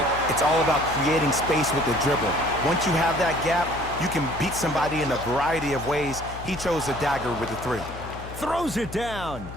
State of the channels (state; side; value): noise; left; hum, 12 dB below the sound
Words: It's all about creating space with the dribble. Once you have that gap, you can beat somebody in a variety of ways. He chose a dagger with the 3. Throws it down.